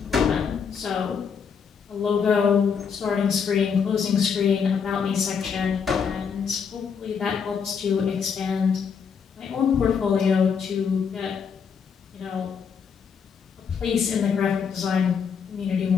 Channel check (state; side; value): quieter; right; 6.5 dB